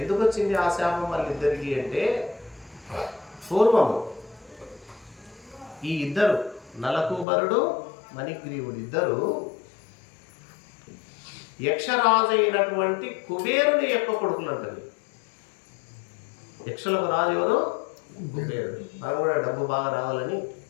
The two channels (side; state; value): right; drops out; at 7.2 s